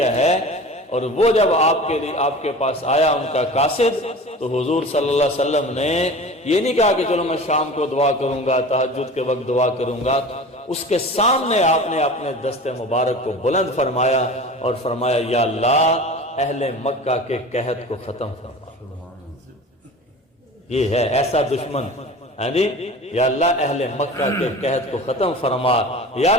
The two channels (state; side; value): normal; both; correlation 0.37